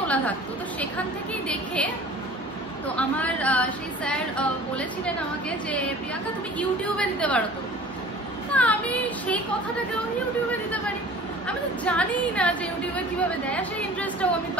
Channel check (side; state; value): both; normal; correlation 0.44